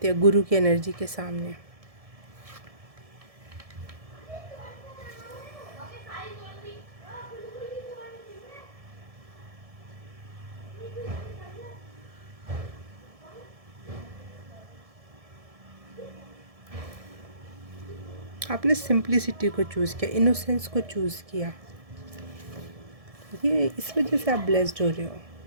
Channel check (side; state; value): left; late; 1.7 ms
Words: या गुरु की एनर्जी के सामने। आपने सिंप्लिसिटी को चूज़ किया, इनोसेंस को चूज़ किया, ये इस वजह से आप ब्लेस्ड हो रहे हो।